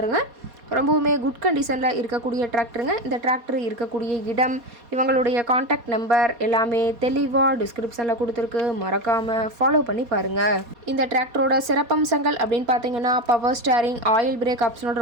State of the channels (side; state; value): left; late; 4.2 ms